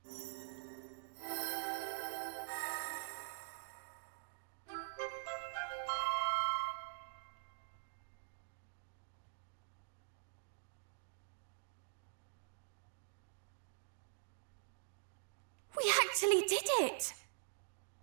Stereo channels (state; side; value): silent; left; digital silence